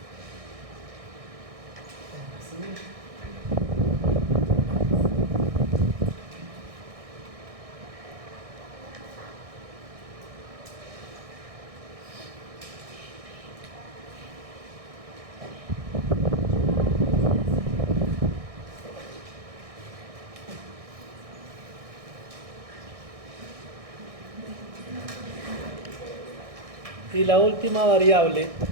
Y la última variable,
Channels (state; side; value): late; left; 1.6 ms